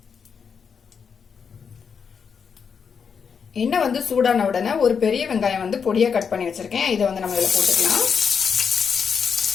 எண்ணெய் சூடான உடனே ஒரு பெரிய வெங்காயம் பொடியா கட் பண்ணி வச்சிருக்கேன். இதை நம்ம இதுல போட்டுக்கலாம்.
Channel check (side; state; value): right; quieter; 6.4 dB